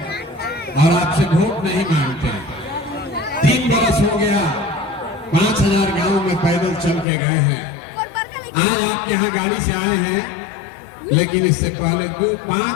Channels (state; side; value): drops out; right; at 7.1 s